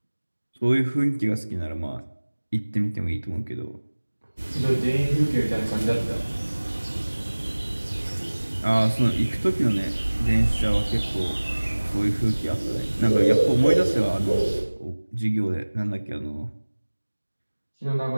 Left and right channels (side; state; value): both; inverted; correlation -1.00